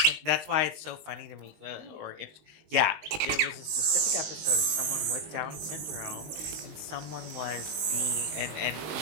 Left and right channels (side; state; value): left; late; 19 ms